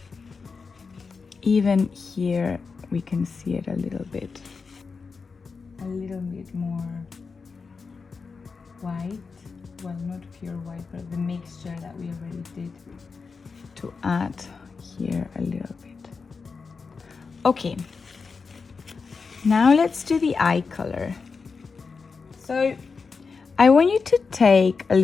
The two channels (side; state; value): right; quieter; 4.9 dB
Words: Even here we can see it a little bit more white, well, not pure white, but the mixture that we already did, to add here a little bit. Okay, now let's do the eye color. So I want you to take a